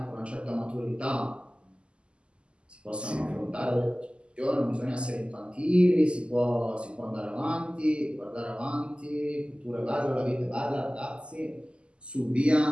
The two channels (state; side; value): late; left; 0.052 ms